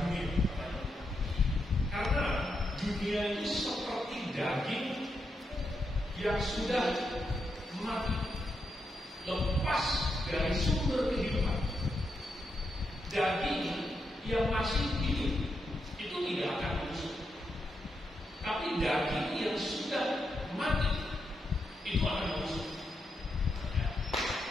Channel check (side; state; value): both; normal; correlation 0.83